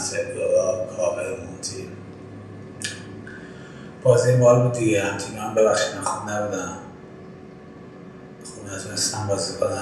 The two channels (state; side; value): identical; both; correlation 1.00